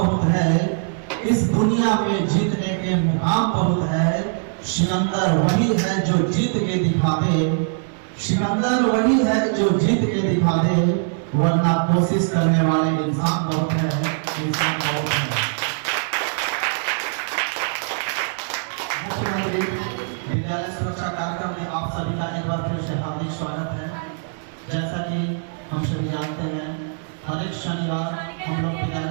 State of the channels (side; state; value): left; silent; digital silence